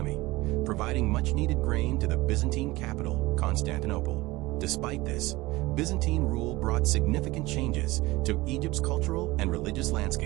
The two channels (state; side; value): quieter; left; 20.2 dB